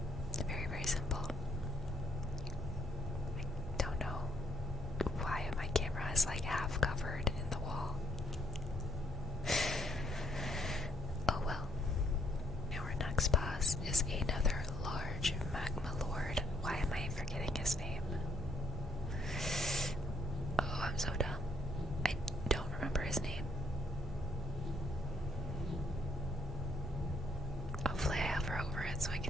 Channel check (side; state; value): both; normal; correlation 0.70